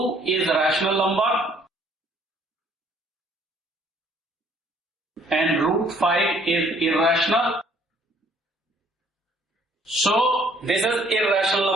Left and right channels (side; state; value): both; normal; correlation 0.61